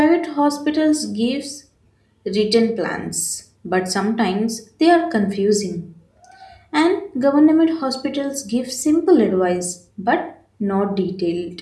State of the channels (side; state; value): both; identical; correlation 1.00